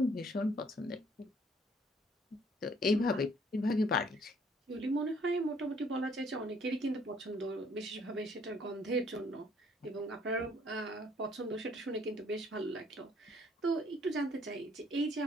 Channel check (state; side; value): normal; both; correlation 0.62